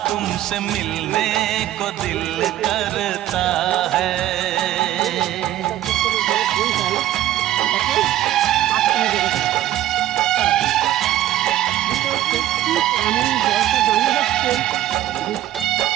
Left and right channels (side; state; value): left; quieter; 13.3 dB